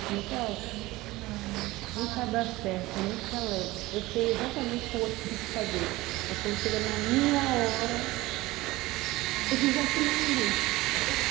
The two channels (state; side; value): quieter; left; 19.4 dB